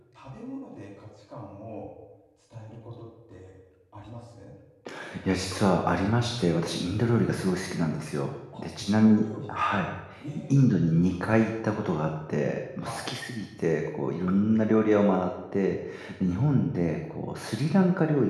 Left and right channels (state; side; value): identical; both; correlation 1.00